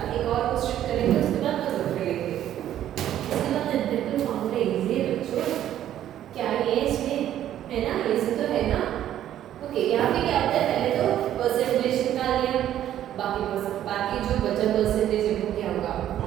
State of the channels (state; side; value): quieter; left; 11.6 dB